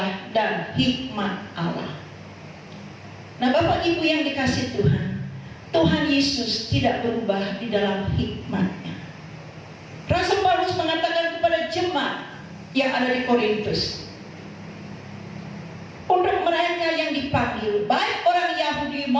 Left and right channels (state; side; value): identical; both; correlation 1.00